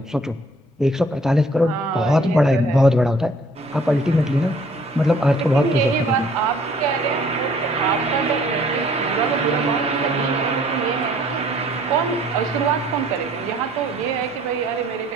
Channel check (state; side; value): normal; both; correlation 0.58